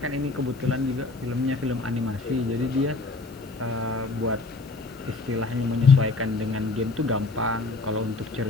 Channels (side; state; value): right; quieter; 3.6 dB